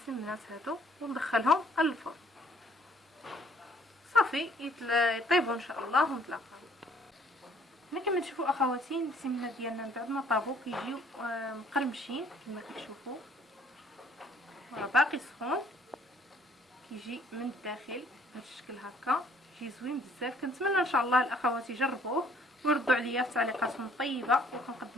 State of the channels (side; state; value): both; normal; correlation 0.60